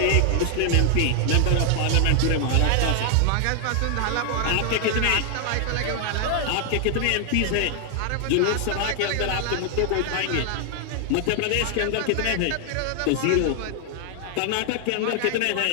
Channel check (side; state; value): both; different; correlation 0.00